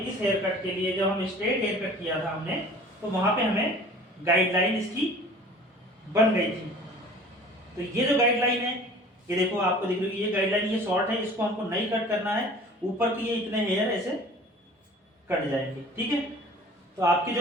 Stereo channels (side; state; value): both; normal; correlation 0.46